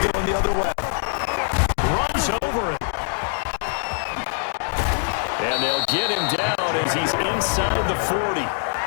the other way. Runs over him. And they'll get him down as he's inside the 40.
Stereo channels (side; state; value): right; silent; digital silence